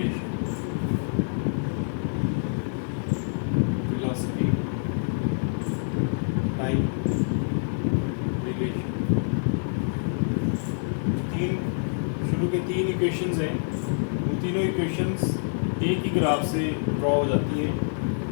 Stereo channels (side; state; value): right; silent; digital silence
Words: Velocity time relation शुरू के तीन इक्वेशंस हैं, वो तीनों इक्वेशंस एक ही ग्राफ से ड्रॉ हो जाती हैं।